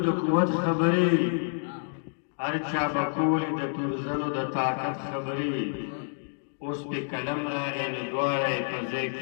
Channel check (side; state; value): right; silent; digital silence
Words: د قوت خبرې هر چا به کولې د تورزنو د طاقت خبرې اوس پې قلم راغی نو دواړه یې په ځای